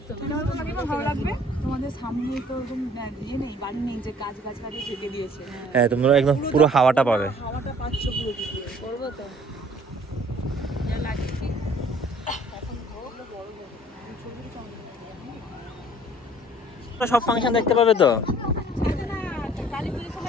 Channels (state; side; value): normal; both; correlation 0.55